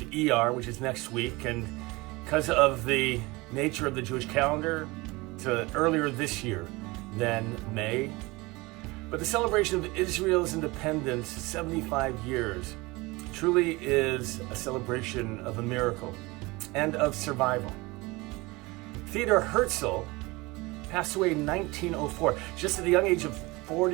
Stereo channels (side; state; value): left; quieter; 23.1 dB